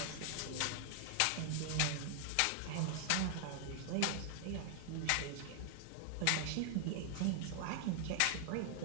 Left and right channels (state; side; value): different; both; correlation 0.00